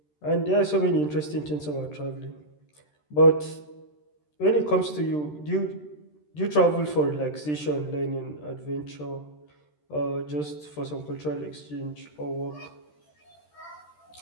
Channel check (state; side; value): late; right; 13 ms